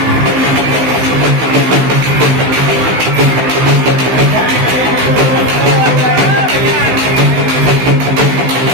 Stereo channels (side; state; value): left; late; 16 ms